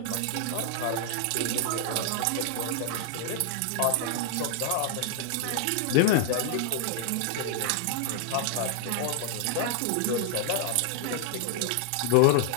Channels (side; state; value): both; different; correlation 0.00